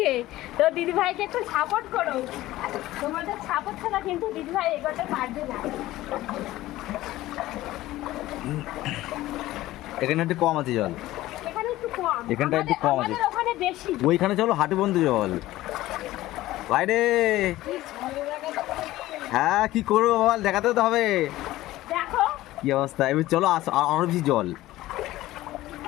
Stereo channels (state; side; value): quieter; right; 16.3 dB